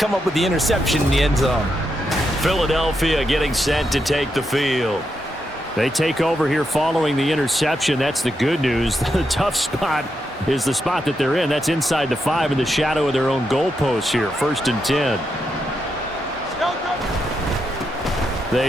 up with the interception in the end zone. Philadelphia getting set to take the field. They take over here following the interception. That's the good news. The tough spot is the spot that they're in. That's inside the 5 in the shadow of their own goalpost here. 1st and 10.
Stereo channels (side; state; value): both; normal; correlation 0.83